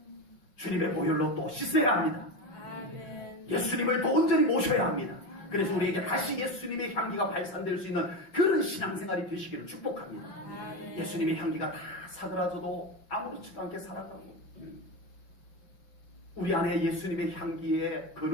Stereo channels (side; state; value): right; late; 5.7 ms